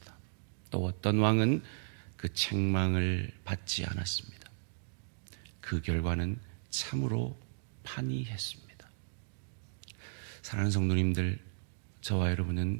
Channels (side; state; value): left; silent; digital silence